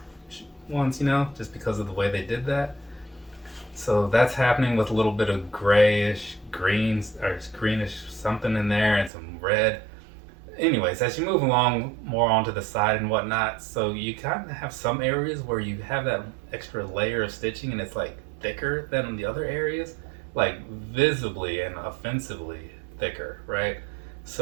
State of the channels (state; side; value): drops out; left; at 9.1 s